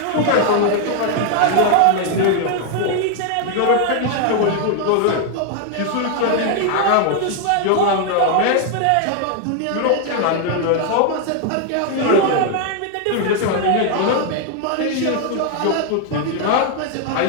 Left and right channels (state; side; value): different; both; correlation 0.00